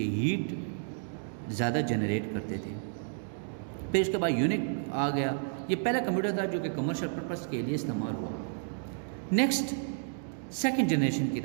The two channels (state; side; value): silent; left; digital silence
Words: ہیٹ زیادہ جنریٹ کرتے تھے. پھر اس کے بعد یونک آ گیا. یہ پہلا کمپیوٹر تھا جو کہ کمرشل پرپس کے لیے استعمال ہوا. نیکسٹ سیکنڈ جنریشن کی